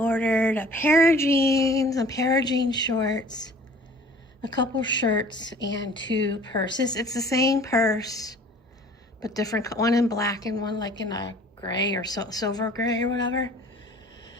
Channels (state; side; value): normal; both; correlation 0.49